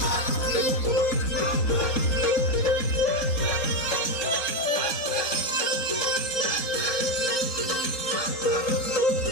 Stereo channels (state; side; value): late; right; 3.8 ms